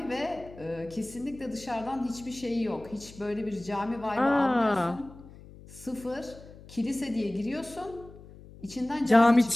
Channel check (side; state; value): left; noise; hum, 19 dB below the sound